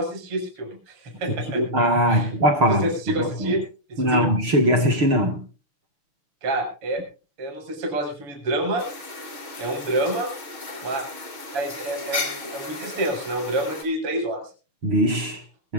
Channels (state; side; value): late; left; 6.3 ms